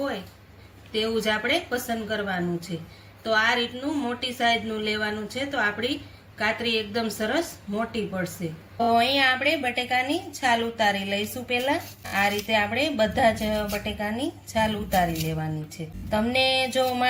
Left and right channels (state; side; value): identical; both; correlation 1.00